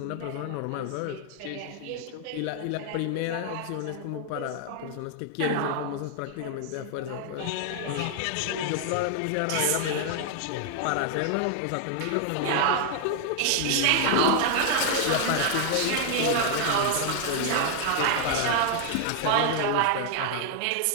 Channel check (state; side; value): different; both; correlation 0.00